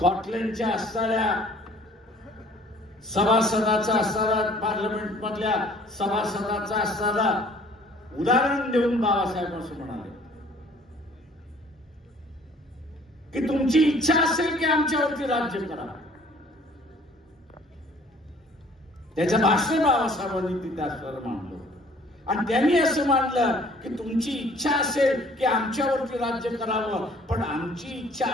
असणाऱ्या सभासदाचा असणारा, पार्लमेंट मधल्या सभासदाचा असणारा उदाहरण देऊन बाबासाहेब असं म्हणाले की तुमची इच्छा असेल की आमच्यावरती राज्य करा. त्याचं भाषण बाबासाहेबांनी तिथे असणारं मांडलं आणि त्यांनी असं मानलं की तुमची इच्छा असेल की आमच्यावरती राज्य करावं, पण आमची इच्छा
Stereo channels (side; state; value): both; normal; correlation 0.55